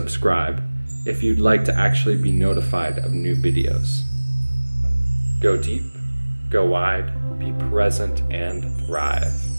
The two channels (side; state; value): both; inverted; correlation -1.00